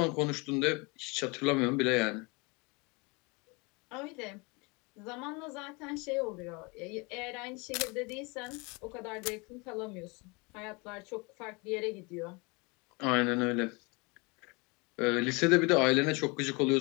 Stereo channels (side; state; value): right; quieter; 28.4 dB